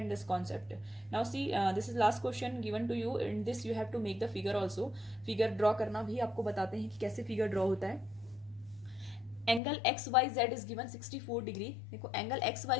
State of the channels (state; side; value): drops out; right; at 9.6 s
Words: this concept. Now see, this is last question given to you. In this you have to make the figure also. Figure draw करना भी आपको बताते हैं कि कैसे figure draw होता है. Angle X Y Z is given 64 degree. देखो एंगल एक्स